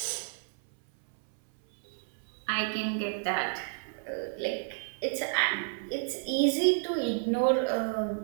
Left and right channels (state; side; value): silent; left; 57 dB below the other